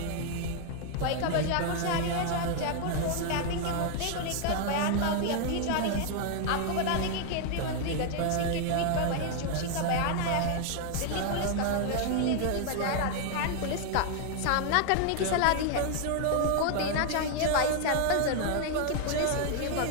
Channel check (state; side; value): different; both; correlation 0.00